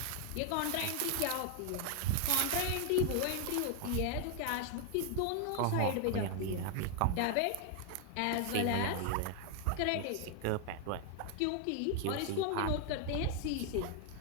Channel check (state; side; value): different; both; correlation 0.00